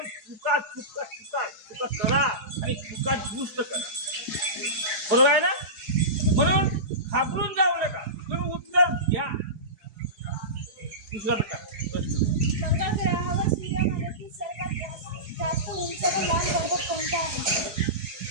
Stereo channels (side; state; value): left; late; 4.7 ms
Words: चुका चुका चुका चुका करा आणि चुका दुरुस्त करा, बरोबर आहे ना? म्हणून घाबरून जाऊ नका, तुम्ही उत्तर घ्या. दुसरा प्रश्न, मंगळ ग्रहावर सूर्यमालेतील सर्वात जास्त उंच व लांब पर्वत कोणता आहे?